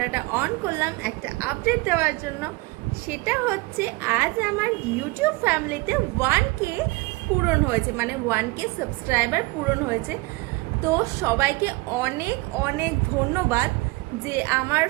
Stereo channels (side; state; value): left; quieter; 23.7 dB